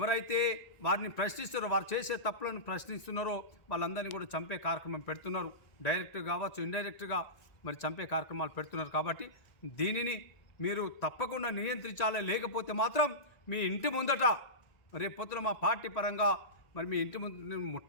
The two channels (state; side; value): late; right; 1.7 ms